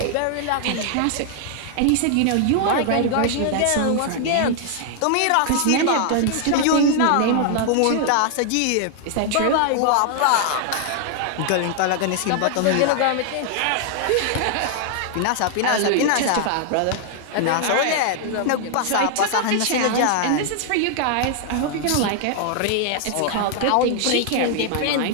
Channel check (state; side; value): different; both; correlation 0.00